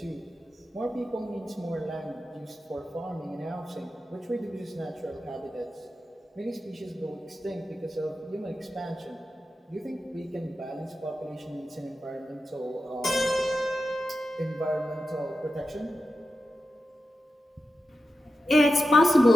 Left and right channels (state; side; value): normal; both; correlation 0.91